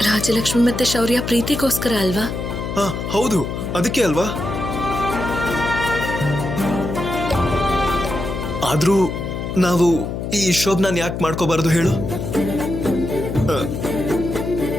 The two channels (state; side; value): noise; left; hum, 4 dB below the sound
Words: ರಾಜಲಕ್ಷ್ಮಿ ಮತ್ತೆ ಶೌರ್ಯ ಪ್ರೀತಿಗೋಸ್ಕರ ಅಲ್ವಾ? ಹೌದು, ಅದಕ್ಕೆ ಅಲ್ವಾ. ಆದ್ರೂ ನಾವು ಈ ಶೋಭನಾನ್ ಯಾಕೆ ಮಾಡ್ಕೋಬಾರ್ದು ಹೇಳು?